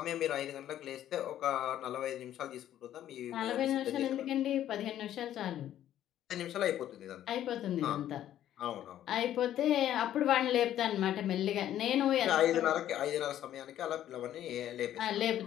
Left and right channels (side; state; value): right; quieter; 11.7 dB